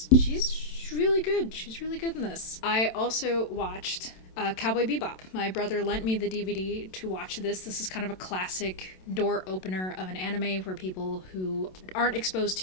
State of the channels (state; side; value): late; right; 27 ms